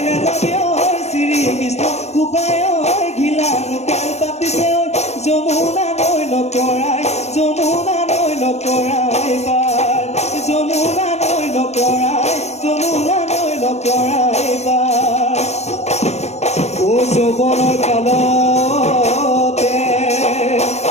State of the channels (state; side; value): late; right; 0.32 ms